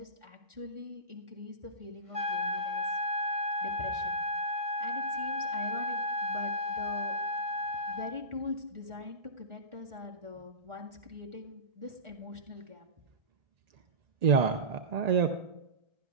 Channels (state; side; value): late; left; 1.8 ms